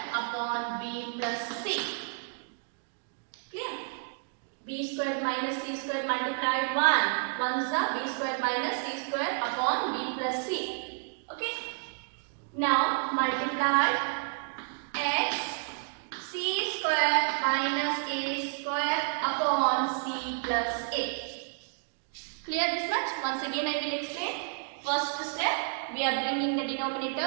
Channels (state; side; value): silent; left; 57 dB below the other